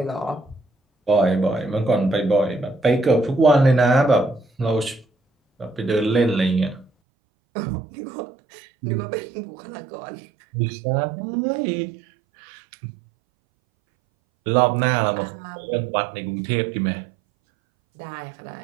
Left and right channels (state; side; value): drops out; left; at 6.9 s